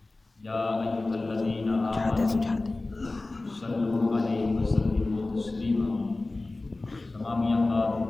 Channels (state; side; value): quieter; right; 3.1 dB